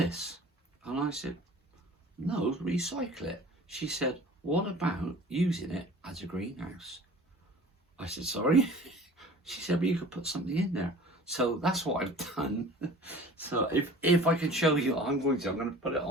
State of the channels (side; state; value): both; normal; correlation 0.44